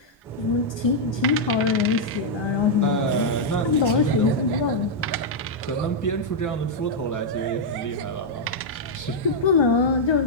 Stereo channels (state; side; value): normal; both; correlation -0.04